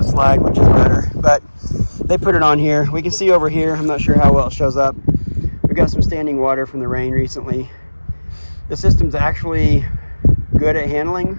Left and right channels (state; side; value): inverted; both; correlation -1.00